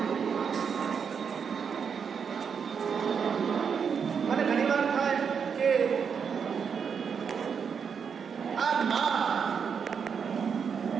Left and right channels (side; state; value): left; quieter; 6.6 dB